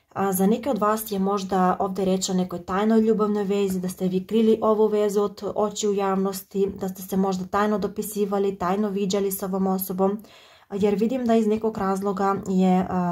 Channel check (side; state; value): both; identical; correlation 1.00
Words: za neke od vas je možda ovdje reč o nekoj tajnoj ljubavnoj vezi, da ste vi krili ovu vezu od očiju javnosti, da ste se možda tajno dopisivali, tajno viđali s ovom osobom, jer vidim da iz nekog razloga je